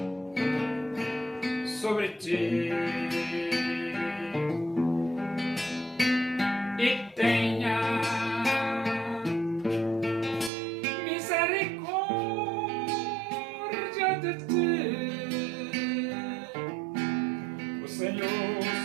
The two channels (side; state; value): left; drops out; at 10.5 s